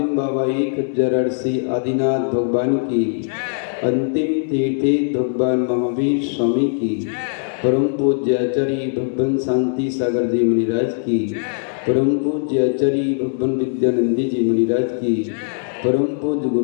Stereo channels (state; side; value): silent; right; 64 dB below the other